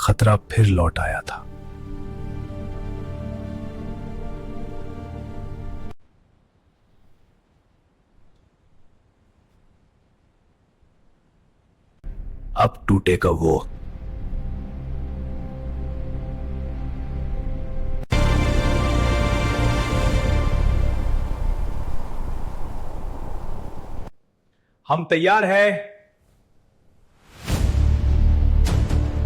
फिर लौट आया था। अब टूटेगा वो। हम तैयार है।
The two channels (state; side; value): identical; both; correlation 1.00